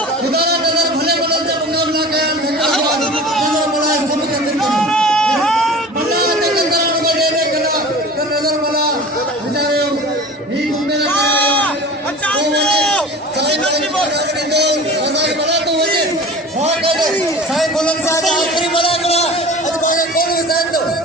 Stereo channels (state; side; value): normal; both; correlation 0.38